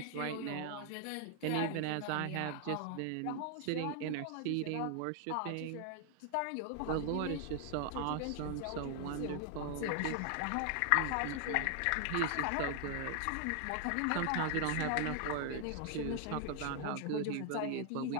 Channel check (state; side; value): different; both; correlation 0.00